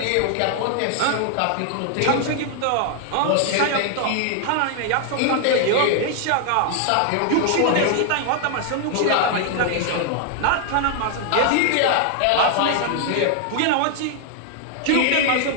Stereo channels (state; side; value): different; both; correlation 0.00